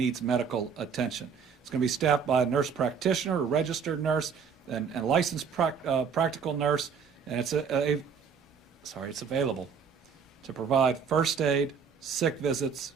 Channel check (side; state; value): left; quieter; 6.5 dB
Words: medical attention. It's going to be staffed by a nurse practitioner, a registered nurse, and a licensed practical nurse, and it's available to provide first aid, sick visits,